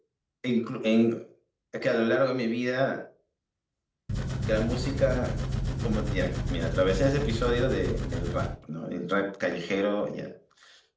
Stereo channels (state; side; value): identical; both; correlation 1.00